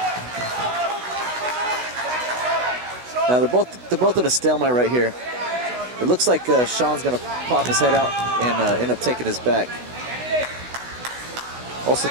Now they're both in a stalemate right here. It looks like Sean's going to pop his head out and end up taking his back. Also,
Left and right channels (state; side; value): late; left; 16 ms